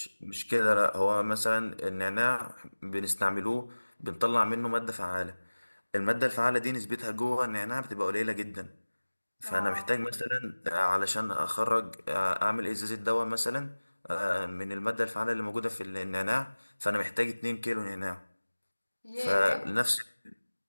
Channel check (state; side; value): inverted; both; correlation -1.00